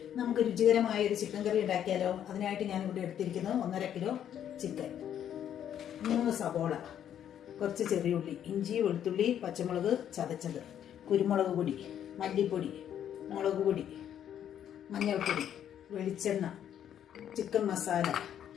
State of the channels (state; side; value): quieter; right; 9.9 dB